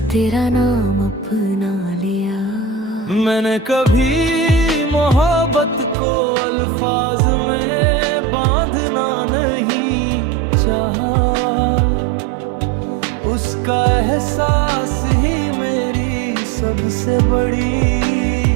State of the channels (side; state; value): left; drops out; at 6.0 s